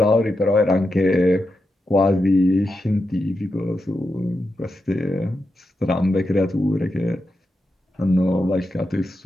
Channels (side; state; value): both; normal; correlation 0.88